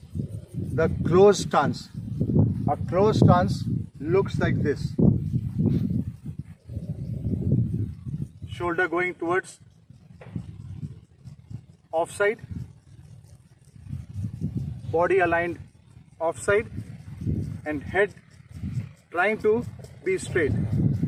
the closed stance. A closed stance looks like this. Shoulder going towards offside, body aligned offside, and head trying to be straight.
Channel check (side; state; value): both; identical; correlation 1.00